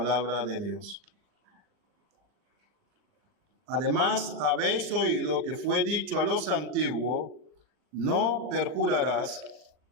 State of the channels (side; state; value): left; late; 39 ms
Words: de Dios. Además, habéis oído que fue dicho a los antiguos, no perjurarás,